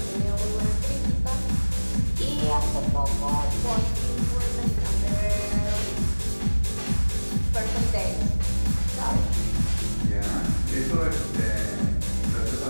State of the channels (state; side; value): inverted; both; correlation -1.00